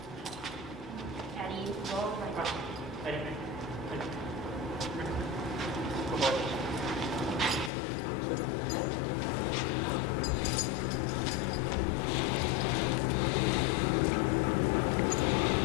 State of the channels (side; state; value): right; drops out; at 7.7 s